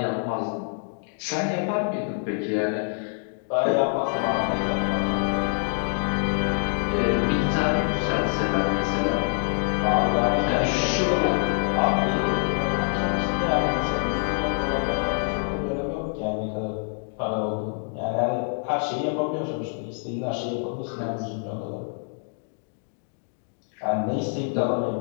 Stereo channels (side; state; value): right; silent; 61 dB below the other